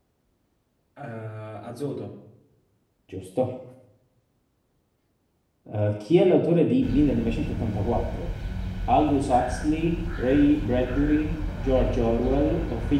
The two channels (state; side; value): identical; both; correlation 1.00